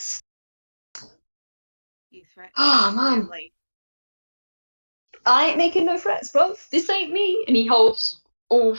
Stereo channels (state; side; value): inverted; both; correlation -1.00